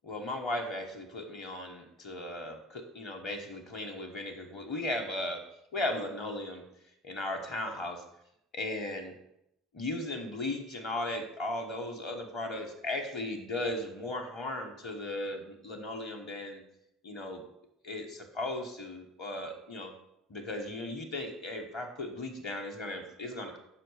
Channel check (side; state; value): both; normal; correlation 0.35